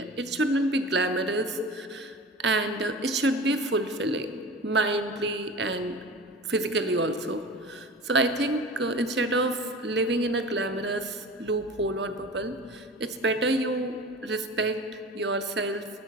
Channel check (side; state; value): both; normal; correlation 0.36